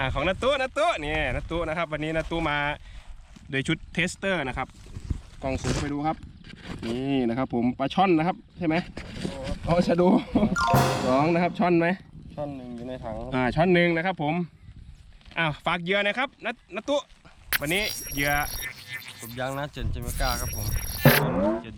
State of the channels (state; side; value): identical; both; correlation 1.00